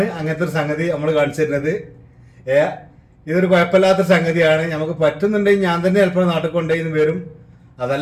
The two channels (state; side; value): identical; both; correlation 1.00